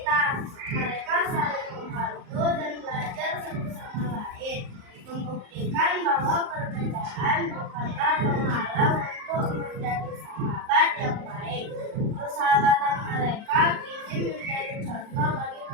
Mereka saling membantu dan belajar satu sama lain, membuktikan bahwa perbedaan bukanlah penghalang untuk menjadi sahabat yang baik. Persahabatan mereka kini menjadi contoh bagi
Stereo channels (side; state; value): left; late; 38 ms